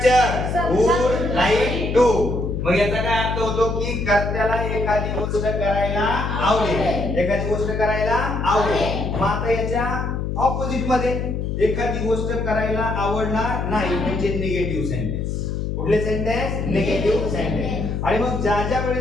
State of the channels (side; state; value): left; noise; hum, 2 dB below the sound